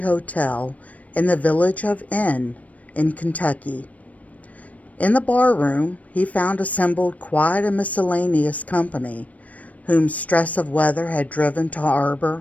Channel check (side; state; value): right; late; 0.069 ms